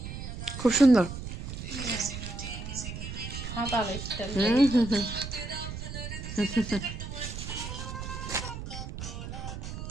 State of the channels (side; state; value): right; noise; rumble, 7 dB below the sound